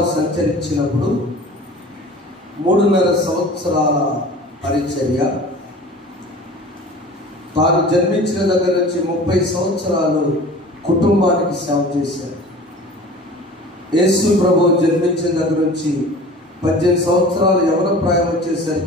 సంచరించినప్పుడు 3.5 సంవత్సరాల పరిచర్య, తాను జన్మించిన దగ్గర నుంచి 30 సంవత్సరాలు కుటుంబానికి సేవ చేశారు. యేసు ప్రభు జన్మించిన దగ్గర నుంచి 18 సంవత్సరాలు యవన ప్రాయం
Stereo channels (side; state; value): both; normal; correlation 0.41